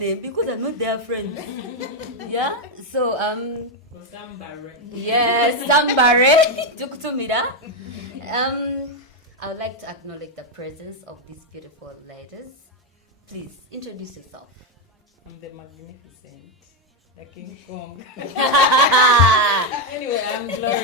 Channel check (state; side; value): normal; both; correlation 0.05